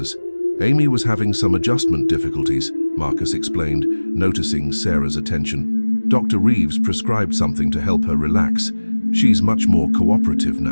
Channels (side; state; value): both; inverted; correlation -1.00